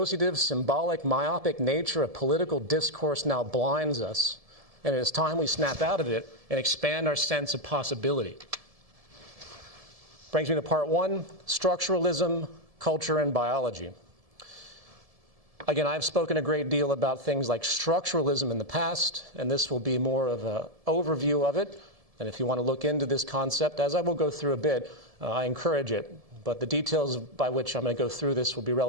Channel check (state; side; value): late; left; 1.7 ms